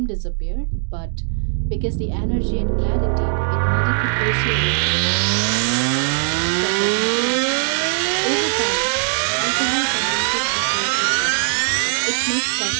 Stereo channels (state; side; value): silent; left; digital silence